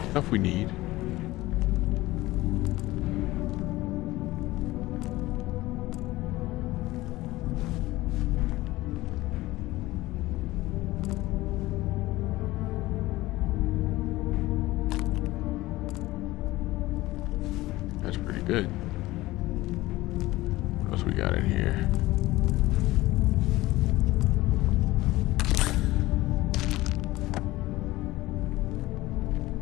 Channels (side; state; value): right; quieter; 18.3 dB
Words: Stuff we need. That's pretty good. What else we got in here?